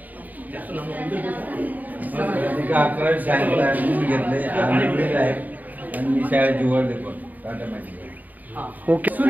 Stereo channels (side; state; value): left; late; 0.081 ms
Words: अकरावी शाळेला ऍडमिशन घेतले आणि मी शाळेत निवडले पण टाटा मॅजिक. ओके.